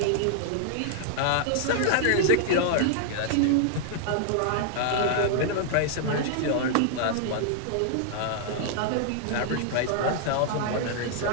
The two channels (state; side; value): different; both; correlation -0.01